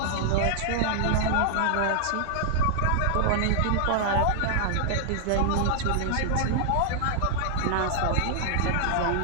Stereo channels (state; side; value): different; both; correlation -0.01